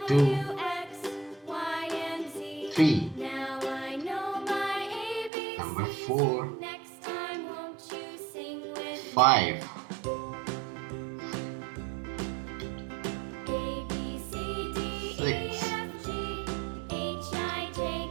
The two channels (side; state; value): left; drops out; at 5.3 s